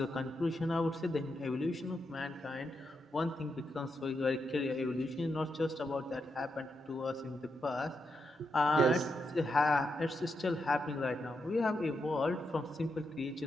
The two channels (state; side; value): normal; both; correlation 0.84